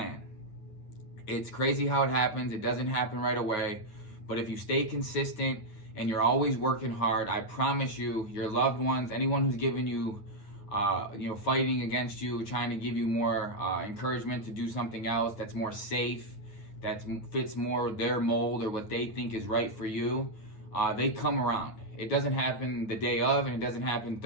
It's crazy how it happens. It doesn't happen right away, but if you stay consistent and you're always working hard, I promise you, your loved ones, anyone who's given you fighting against you, trying to give you more encouragement to do something else that's more safe, that fits more their mold or what they think is right for you, they come around. It doesn't happen the day of, and it doesn't happen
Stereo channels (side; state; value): right; late; 9.1 ms